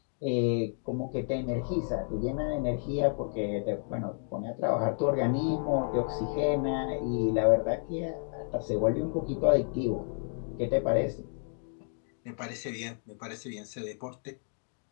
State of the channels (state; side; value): silent; right; 57 dB below the other